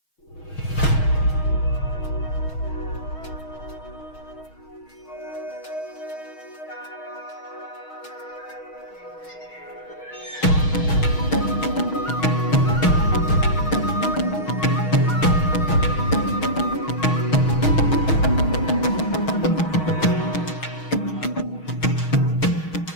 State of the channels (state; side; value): late; right; 6.3 ms